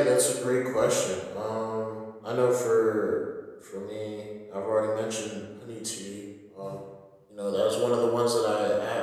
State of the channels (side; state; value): both; identical; correlation 1.00